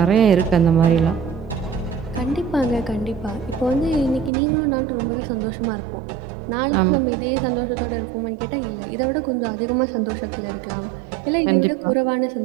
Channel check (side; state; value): left; drops out; at 4.3 s